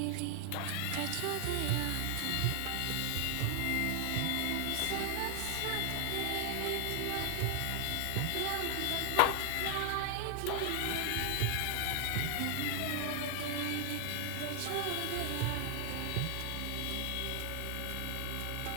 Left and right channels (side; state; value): both; different; correlation 0.00